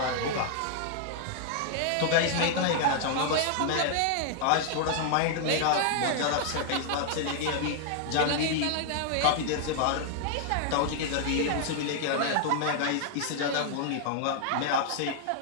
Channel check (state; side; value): different; both; correlation 0.00